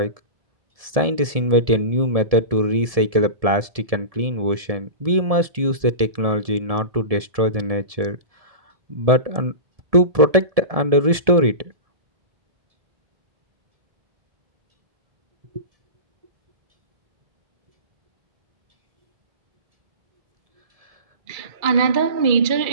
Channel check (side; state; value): left; late; 1.7 ms